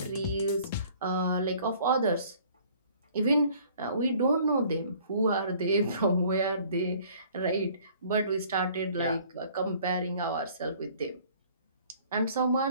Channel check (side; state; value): both; inverted; correlation -0.55